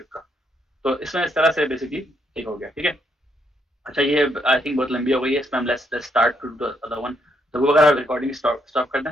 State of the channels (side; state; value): both; normal; correlation 0.75